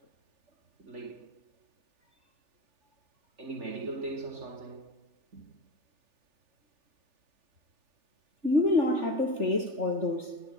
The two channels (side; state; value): left; late; 3.4 ms